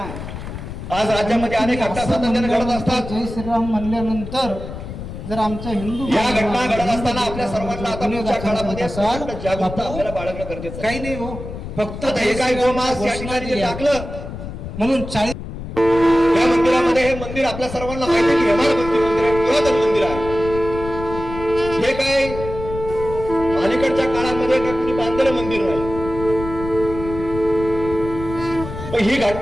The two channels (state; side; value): noise; left; rumble, 9 dB below the sound